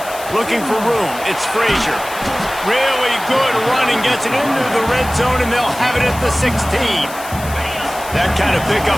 Looking for room, it's Frazier. Really good running, gets it into the red zone, and they'll have it at the 16. That kind of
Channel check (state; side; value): noise; left; hiss, 14 dB below the sound